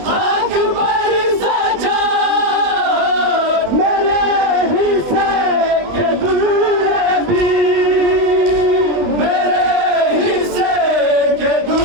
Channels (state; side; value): late; left; 20 ms